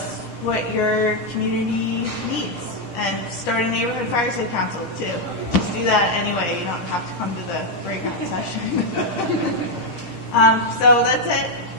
what your community needs. And start a neighborhood fire safe council too. Just do that anyway. You don't have to come to the breakout session. So that's it.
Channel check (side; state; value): right; late; 10 ms